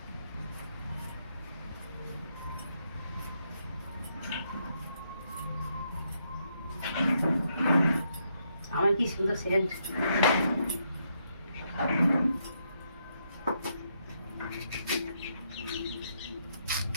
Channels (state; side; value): inverted; both; correlation -0.77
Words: আমার কি সুন্দর সেন্ট।